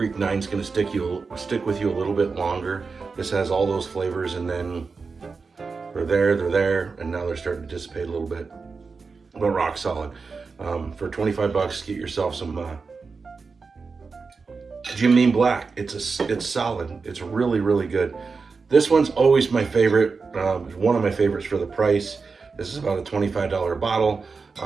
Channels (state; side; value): quieter; left; 4.7 dB